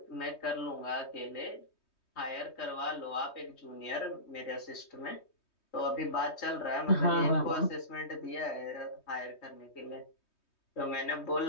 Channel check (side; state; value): right; late; 3.2 ms